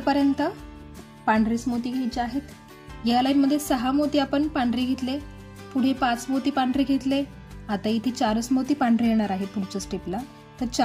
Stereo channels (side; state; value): both; identical; correlation 1.00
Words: पांढरेच मोती घ्यायचे आहेत. या लाईन मध्ये 6 मोती आपण पांढरे घेतले, पुढे 5 मोती पांढरे घेतले. आता इथे 4 मोती पांढरे येणार आहे पुढच्या स्टेपला, तर